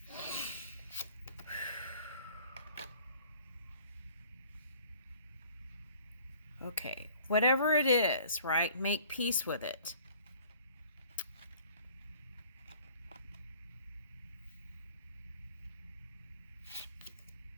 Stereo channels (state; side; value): inverted; both; correlation -0.53